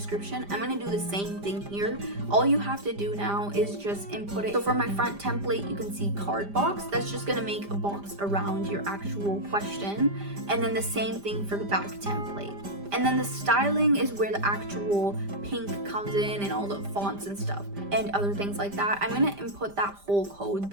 I'm gonna do the same thing here. All you have to do now is just input it. So for my front template, you can see card box. That's just gonna make a box around your actual question. And then the same thing for the back template. And then the styling is where the actual pink comes in and all the fonts and stuff and other things like that. I'm going to input that whole code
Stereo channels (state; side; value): late; left; 5.0 ms